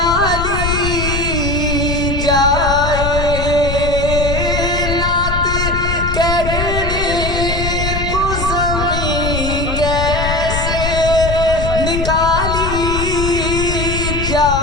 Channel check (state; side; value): noise; left; rumble, 3 dB below the sound